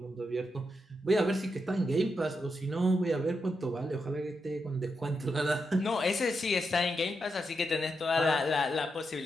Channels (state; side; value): normal; both; correlation 0.85